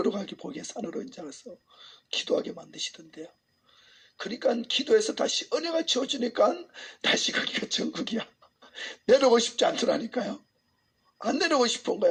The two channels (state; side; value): identical; both; correlation 1.00